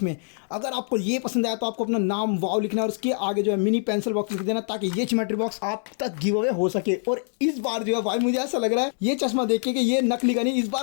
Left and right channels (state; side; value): silent; right; digital silence